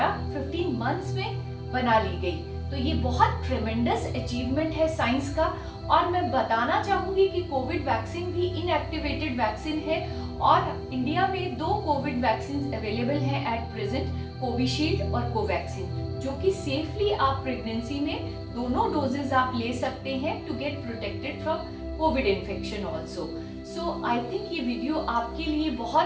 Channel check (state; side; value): identical; both; correlation 1.00